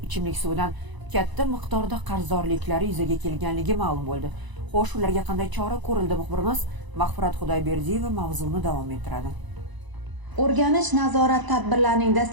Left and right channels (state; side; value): late; left; 1.0 ms